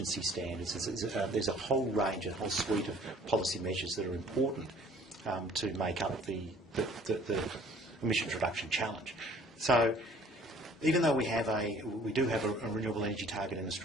standards. There's a whole range, a whole suite of policy measures that are important to make up the emissions reduction challenge. So even though we do have a renewable energy target in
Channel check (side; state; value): both; normal; correlation 0.54